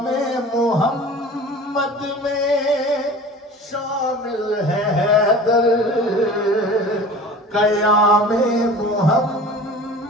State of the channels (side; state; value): both; normal; correlation 0.40